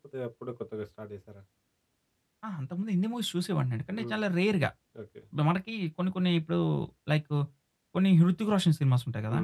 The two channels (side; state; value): both; identical; correlation 1.00